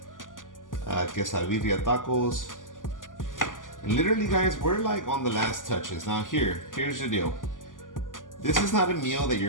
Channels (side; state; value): right; late; 0.88 ms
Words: Birria Tacos. And literally, guys, we're like on the last touches. Now here's the deal. This is not a meal that